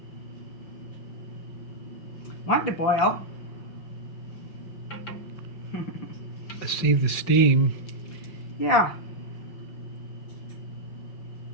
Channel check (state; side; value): late; right; 5.5 ms